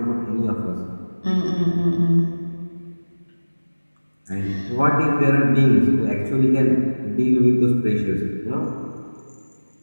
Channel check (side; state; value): both; inverted; correlation -1.00